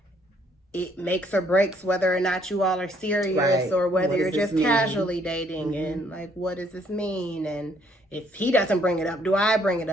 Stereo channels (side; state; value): both; normal; correlation 0.65